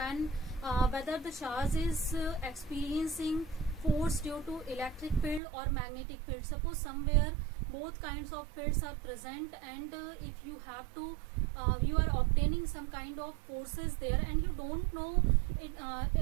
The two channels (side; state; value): left; drops out; at 5.4 s